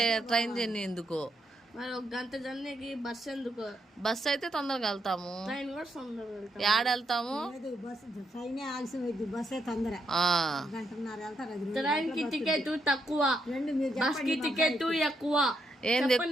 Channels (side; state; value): both; normal; correlation 0.79